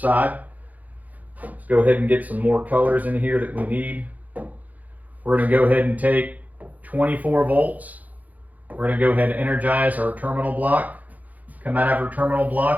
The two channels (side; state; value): left; late; 0.079 ms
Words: Let's go ahead and get some more colors in here that we need. We're going to go ahead and take 24 volts. We're going to go ahead and energize our terminal block. Come out of our terminal